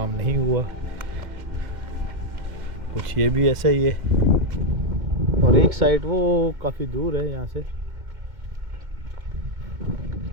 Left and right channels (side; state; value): left; late; 2.2 ms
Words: नहीं हुआ। कुछ ये भी ऐसा ही है, और एक साइड वो काफ़ी दूर है यहाँ से।